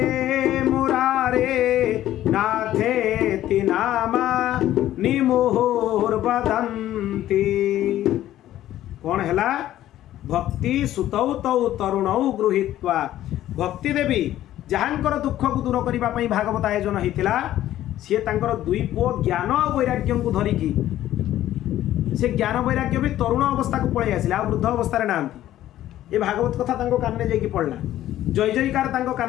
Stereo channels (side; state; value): right; quieter; 13.2 dB